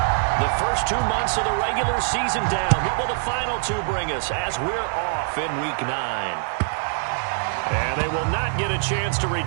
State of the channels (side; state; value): left; silent; 62 dB below the other